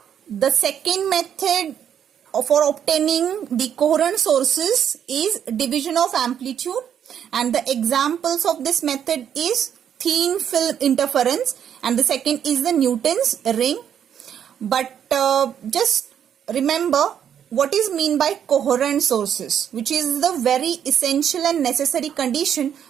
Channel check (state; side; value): quieter; left; 9.0 dB